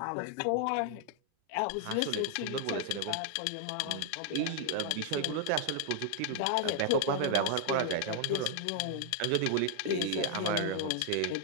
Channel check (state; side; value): different; both; correlation -0.01